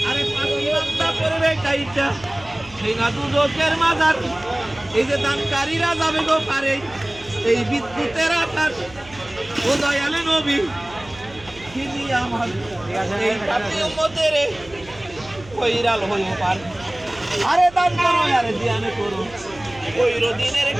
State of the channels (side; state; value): right; noise; hum, 21 dB below the sound